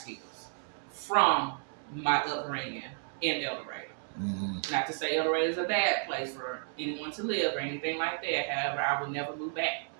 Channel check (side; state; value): left; silent; 56 dB below the other